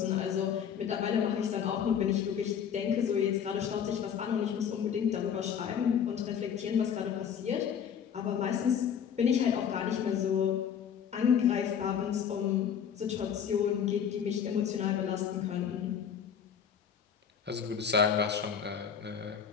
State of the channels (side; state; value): right; quieter; 8.0 dB